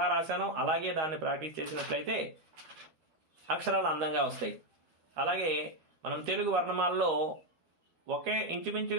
రాశానో అలాగే దాన్ని ప్రాక్టీస్ చేసినట్లయితే అక్షరాలు అందంగా వస్తాయి. అలాగే మనం తెలుగు వర్ణమాలలో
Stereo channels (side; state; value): left; late; 13 ms